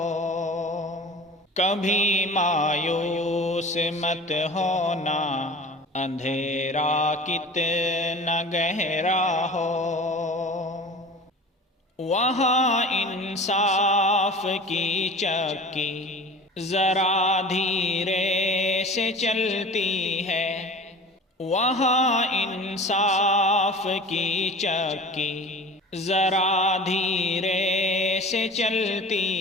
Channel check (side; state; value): both; normal; correlation 0.39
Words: کبھی مایوس مت ہونا، اندھیرا کتنا گہرا ہو۔ وہاں انصاف کی چکی ذرا دھیرے سے چلتی ہے۔ وہاں انصاف کی چکی ذرا دھیرے سے